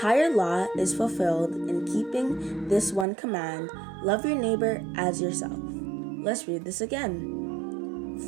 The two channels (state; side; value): drops out; left; at 3.1 s